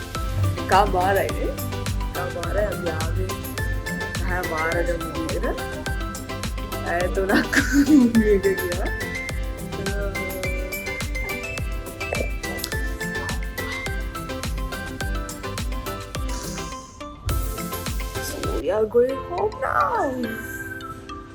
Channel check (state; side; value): identical; both; correlation 1.00